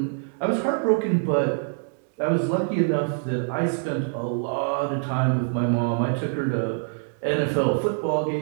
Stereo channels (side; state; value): left; silent; digital silence